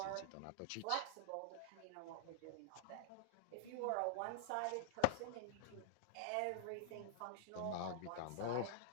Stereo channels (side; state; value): both; different; correlation -0.01